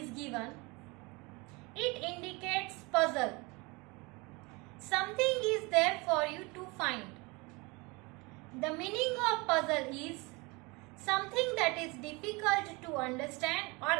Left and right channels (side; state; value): left; quieter; 26.3 dB